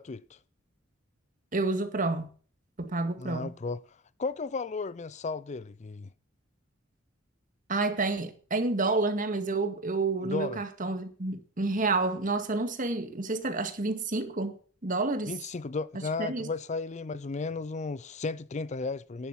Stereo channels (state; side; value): normal; both; correlation 0.23